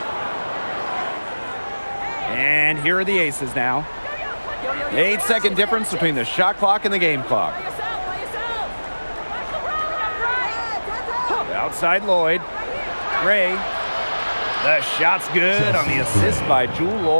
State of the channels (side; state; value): both; inverted; correlation -1.00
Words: And here are the Aces now. 8-second difference between the shot clock and the game clock. Outside Lloyd. Gray. The shot's good on the assist by Jewel